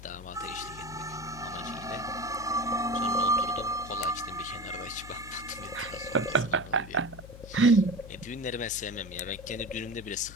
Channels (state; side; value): noise; left; hum, 15 dB below the sound